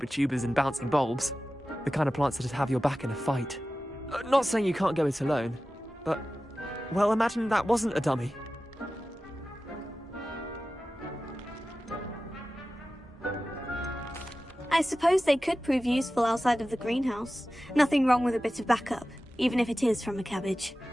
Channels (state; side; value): normal; both; correlation 0.95